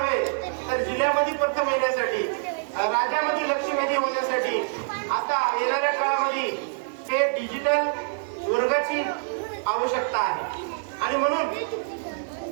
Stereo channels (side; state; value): left; silent; digital silence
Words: तर जिल्ह्यामध्ये प्रथम येण्यासाठी, राज्यामध्ये लक्षवेधी होण्यासाठी आता येणाऱ्या काळामध्ये ते डिजिटल वर्गाची आवश्यकता आहे आणि म्हणून